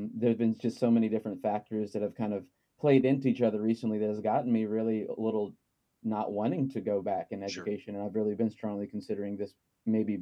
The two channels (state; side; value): identical; both; correlation 1.00